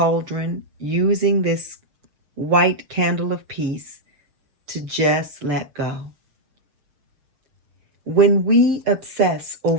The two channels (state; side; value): late; left; 7.2 ms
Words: using this white candle of peace to just let go. When we obsess